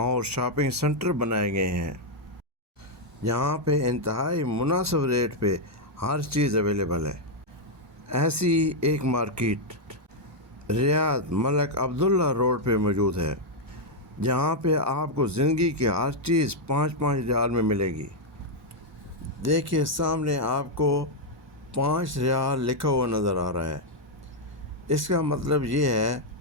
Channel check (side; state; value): both; normal; correlation -0.01